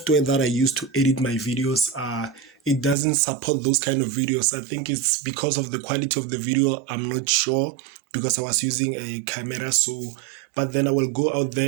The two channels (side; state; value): left; drops out; at 3.0 s